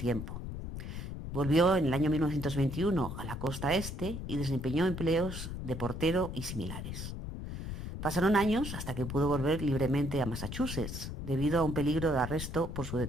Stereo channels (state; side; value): noise; left; rumble, 6 dB below the sound